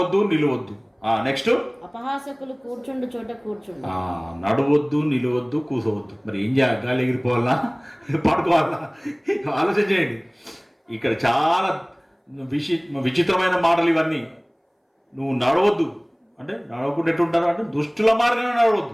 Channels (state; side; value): identical; both; correlation 1.00